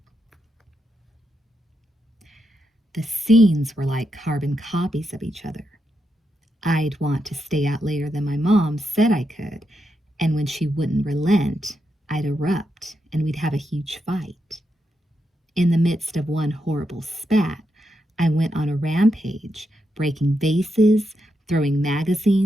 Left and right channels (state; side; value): normal; both; correlation 0.84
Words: The scenes were like carbon copies of each other. I'd want to stay out later than my mom said I could, and when she wouldn't relent, I'd erupt and we'd have a huge fight. In the midst of one horrible spat, I went on a rampage, breaking vases, throwing